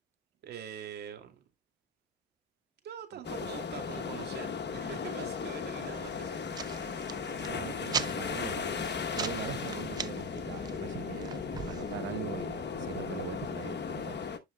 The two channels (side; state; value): both; normal; correlation 0.15